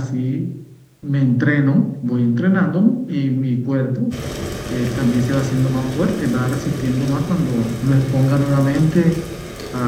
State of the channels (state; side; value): identical; both; correlation 1.00